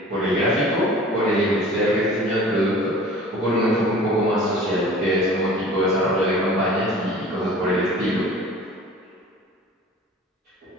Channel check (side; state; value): both; normal; correlation 0.44